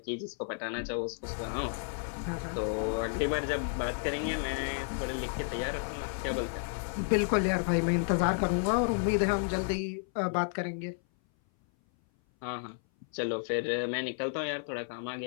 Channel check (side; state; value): right; silent; 56 dB below the other